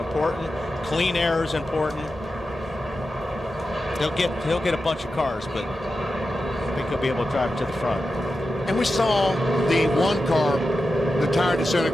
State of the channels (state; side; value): normal; both; correlation 0.91